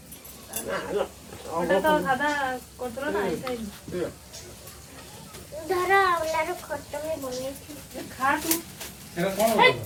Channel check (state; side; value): identical; both; correlation 1.00